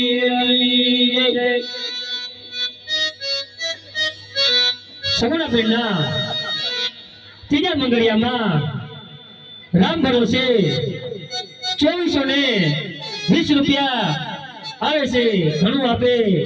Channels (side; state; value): both; identical; correlation 1.00